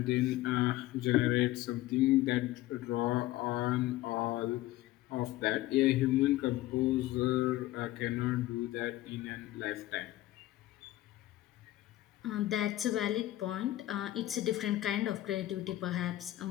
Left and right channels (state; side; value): quieter; right; 15.9 dB